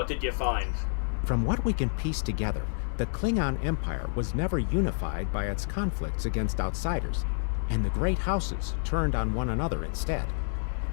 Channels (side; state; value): right; silent; digital silence